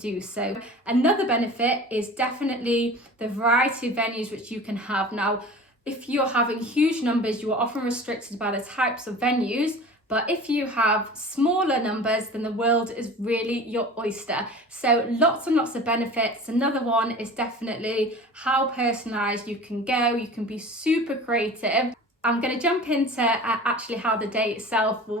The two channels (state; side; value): normal; both; correlation 0.39